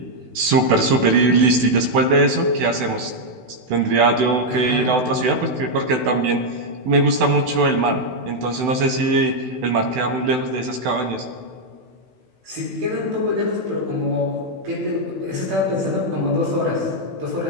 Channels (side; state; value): left; late; 16 ms